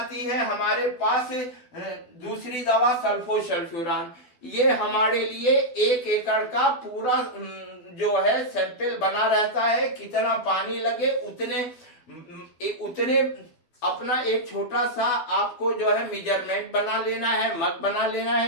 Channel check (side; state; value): right; late; 12 ms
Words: है हमारे पास दूसरी दवा सल्फोसल्फ्यूरान। ये हमारे लिए 1 एकड़ का पूरा जो है सैंपल बना रहता है, कितना पानी लगे उतने अपना एक छोटा सा आपको जो है मेजरमेंट बना लेना है, मग बना लेना